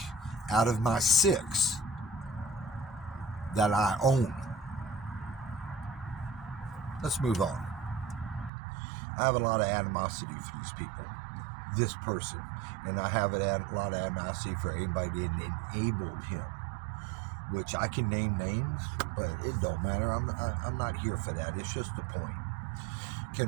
out of my 6 that I own. Let's move on. I have a lot of animosity for these people. This person. And I have a lot of animosity for anybody that enabled him. Which I can name names, but it don't matter. I'm not here for that. It's just the point.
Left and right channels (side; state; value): left; drops out; at 8.5 s